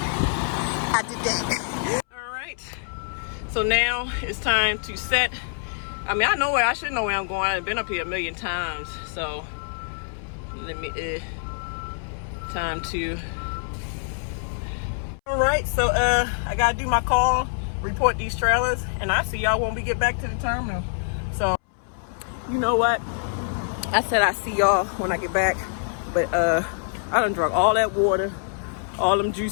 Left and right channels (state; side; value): silent; right; 62 dB below the other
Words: All right. So now it's time to set. I mean, I should know where I'm going. I've been up here a million times. So let me, time to. All right, so I gotta do my call, report these trailers, and I see y'all when we get back to the terminal. So, you know what? I said I see y'all when I get back, but I done drunk all that water, all them